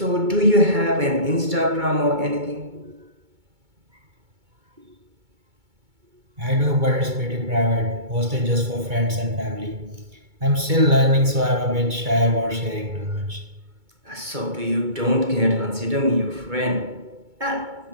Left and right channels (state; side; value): late; left; 2.2 ms